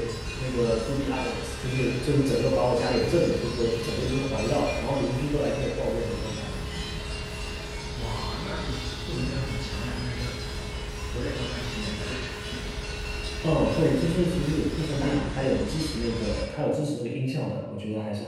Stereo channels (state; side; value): identical; both; correlation 1.00